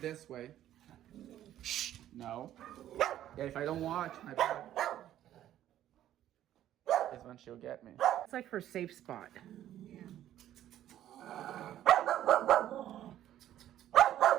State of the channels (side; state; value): left; quieter; 12.2 dB